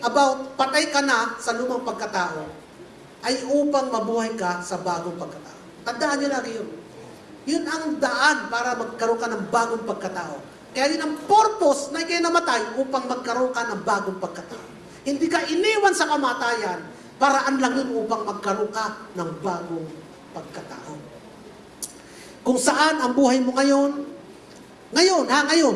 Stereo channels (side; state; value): both; identical; correlation 1.00